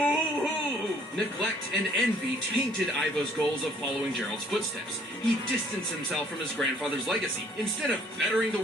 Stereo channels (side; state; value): both; normal; correlation 0.61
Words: Neglect and envy tainted Ivo's goals of following Gerald's footsteps. He distanced himself from his grandfather's legacy. Instead of bettering the